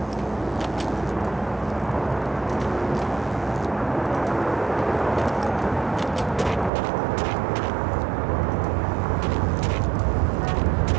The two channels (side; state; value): left; drops out; at 6.7 s